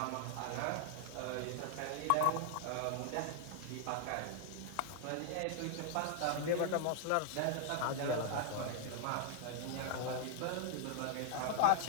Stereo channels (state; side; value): different; both; correlation 0.00